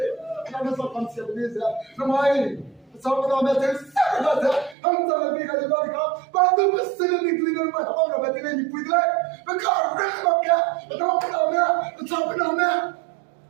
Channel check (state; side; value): drops out; left; at 4.8 s